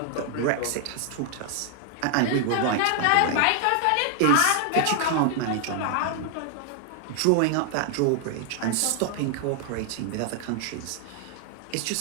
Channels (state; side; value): different; both; correlation 0.00